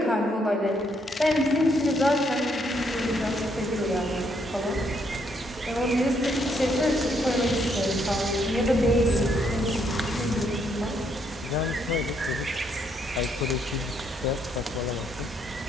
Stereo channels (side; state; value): both; normal; correlation 0.73